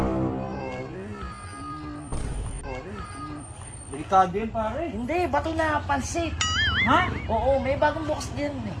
Delikado yun pare. Hindi, bato na pansit. Ha? Oo, may bagong bukas din eh.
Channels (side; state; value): both; identical; correlation 1.00